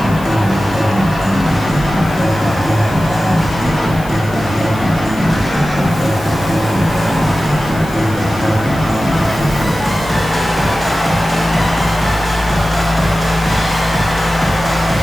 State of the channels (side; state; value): left; noise; hiss, 19 dB below the sound